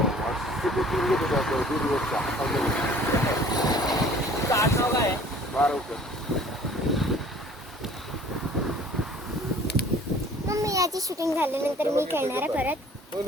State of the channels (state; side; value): normal; both; correlation 0.51